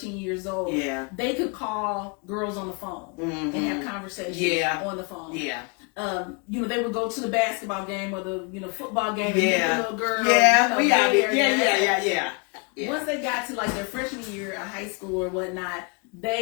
years old, they could call girls on the phone and have conversations on the phone. Yeah. They would go to the basketball game or the football game and meet the little girl. Yeah, we out there. Yeah. Once they got to like their freshman year of high school or whatnot,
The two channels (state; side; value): quieter; right; 34.3 dB